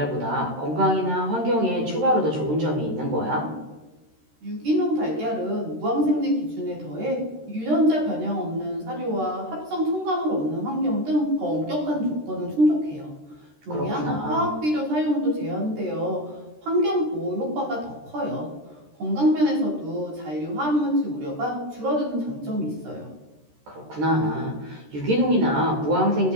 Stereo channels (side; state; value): left; late; 13 ms